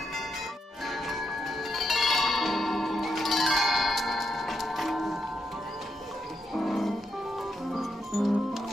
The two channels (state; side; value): normal; both; correlation 0.82